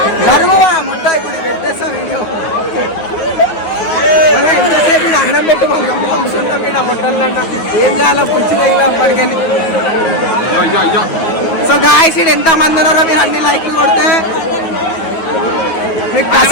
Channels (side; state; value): right; late; 9.3 ms